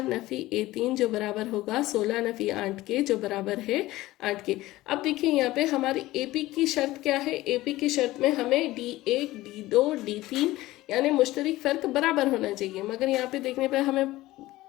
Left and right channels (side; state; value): right; quieter; 17.4 dB